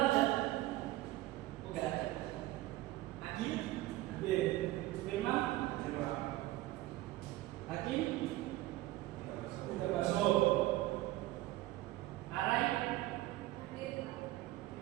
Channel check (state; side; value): quieter; left; 17.0 dB